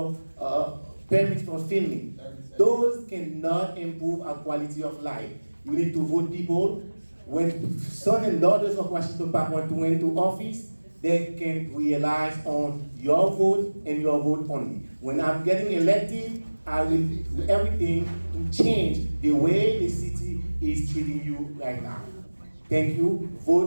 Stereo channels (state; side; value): inverted; both; correlation -1.00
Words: permits for filming. Those cannot improve our quality of life. You need to vote people when sons and daughters of Washington Park want to went into office, they can realize on your vote and your vote only. When I'm getting elected, I will do everything to change the way the city is treating you right now. Thank you.